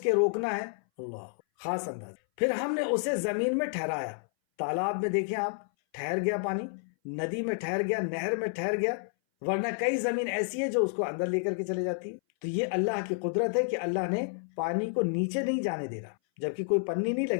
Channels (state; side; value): silent; right; 58 dB below the other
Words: روکنا ہے, اللہ خاص اندازہ. پھر ہم نے اسے زمین میں ٹھہرایا. تالاب میں دیکھیں آپ, ٹھہر گیا پانی, ندی میں ٹھہر گیا, نہر میں ٹھہر گیا, ورنہ کئی زمین ایسی ہے جو اس کو اندر لے کر کے چلے جاتی ہے. تو یہ اللہ کی قدرت ہے کہ اللہ نے پانی کو نیچے نہیں جانے دے رہا, جبکہ کوئی پنی نہیں